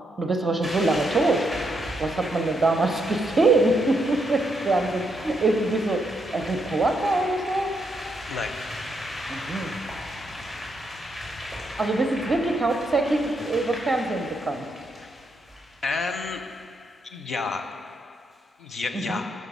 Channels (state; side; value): normal; both; correlation 0.78